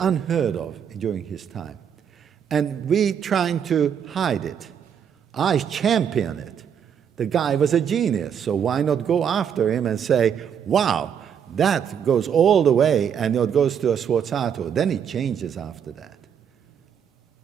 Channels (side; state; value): left; quieter; 8.1 dB